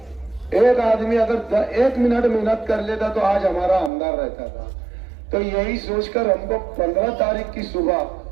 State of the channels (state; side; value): drops out; left; at 3.9 s